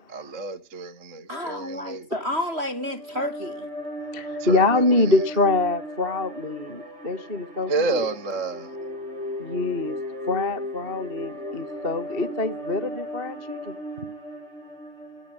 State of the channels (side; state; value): left; late; 3.1 ms